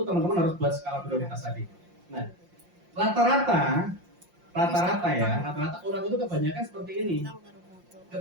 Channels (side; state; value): left; late; 5.7 ms